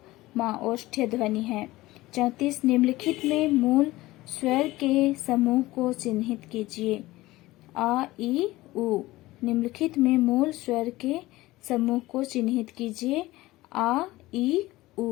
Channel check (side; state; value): right; quieter; 18.3 dB